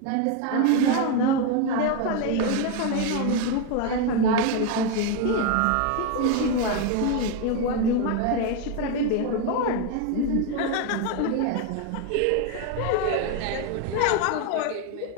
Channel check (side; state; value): both; different; correlation 0.02